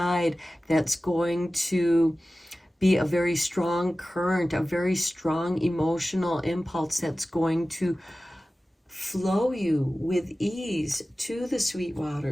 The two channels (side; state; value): both; normal; correlation 0.96